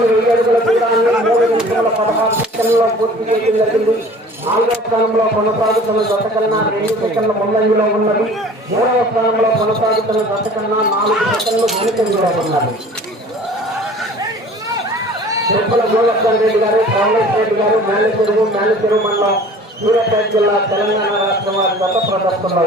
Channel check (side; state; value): both; normal; correlation 0.46